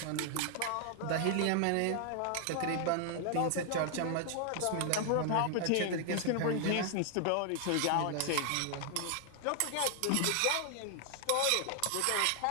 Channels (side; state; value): both; different; correlation 0.00